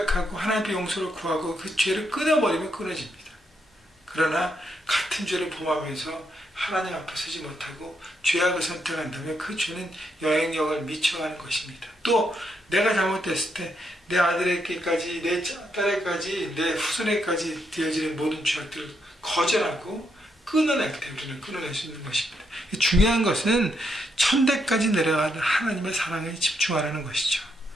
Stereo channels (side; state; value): both; normal; correlation 0.79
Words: 하나님의 용서를 구하고 그 죄를 끊어버리면 끊어집니다. 그러나 같은 죄를 범하면서 하나님 앞에 서지 못하고 죄악을 선택한다면 그 죄는 영향력을 미쳐가는 것입니다. 또 내가 잘못됐을 때 내 아들에게까지, 내 딸에게까지, 내 후손에게까지 되어지는 모든 죄악들을 거절하고 끊어낼 때 우리는 끊어낼 수 있는 것입니다. 중요한 것은 천대까지 내려가는 하나님의 사랑에 집중하라는 것이죠.